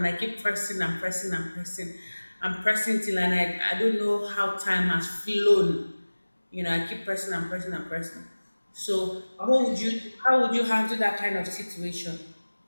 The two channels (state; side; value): inverted; both; correlation -1.00